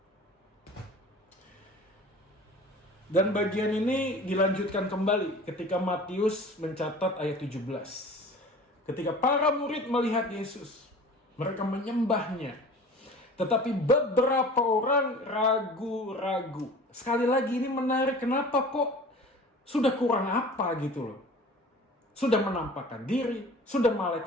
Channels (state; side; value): normal; both; correlation 0.42